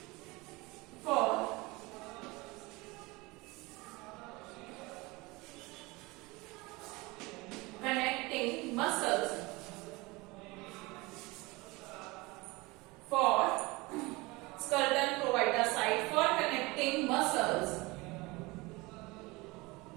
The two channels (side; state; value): left; quieter; 23.5 dB